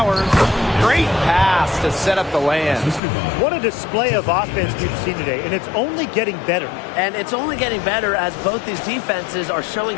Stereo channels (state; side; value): drops out; right; at 3.0 s